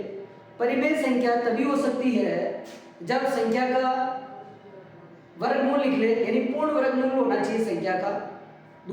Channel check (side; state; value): both; identical; correlation 1.00